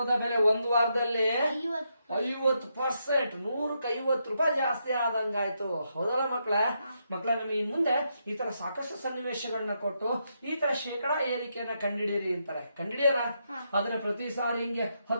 ಬೆಲೆ ಒಂದು ವಾರದಲ್ಲಿ 50%, 100ಕ್ಕೆ 50 ರೂಪಾಯಿ ಜಾಸ್ತಿ ಆದಂಗಾಯ್ತು. ಹೌದಲ್ಲ ಮಕ್ಕಳ? ನಮಗೆ ಇನ್ ಮುಂದೆ ಈ ತರ ಸಾಕಷ್ಟು ಸನ್ನಿವೇಶಗಳನ್ನ ಕೊಟ್ಟು ಈ ತರ ಶೇಕಡಾ ಏರಿಕೆಯನ್ನ ಕಂಡಿಡೀರಿ ಅಂತಾರೆ. ಕಂಡಿಡಿಯಲ್ಲ? ಆದ್ರೆ ಪ್ರತಿ ಸಾರಿ ಹಿಂಗೆ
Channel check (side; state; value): both; inverted; correlation -0.81